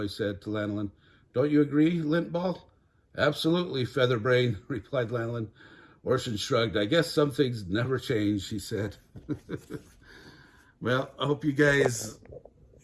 said to Lanolin. "Don't you agree, Lintball?" "Absolutely, Featherbrain," replied Lanolin. Orson shrugged. "I guess some things never change," he said. Well, I hope you guys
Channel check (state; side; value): identical; both; correlation 1.00